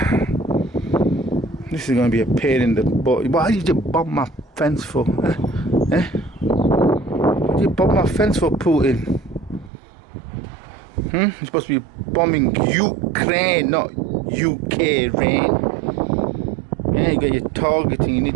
This is going to be a pain in the butt. Why did you bomb my fence for? Eh? What did you bomb my fence for, Putin? You're supposed to be bombing Ukraine, not UK rain. Yeah, you got your targeting. You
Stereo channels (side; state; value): left; drops out; at 9.7 s